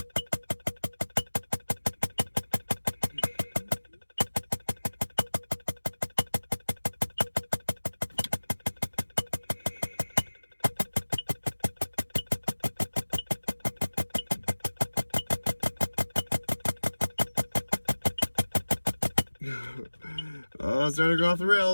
Oh, it's starting to go off the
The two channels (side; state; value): both; inverted; correlation -1.00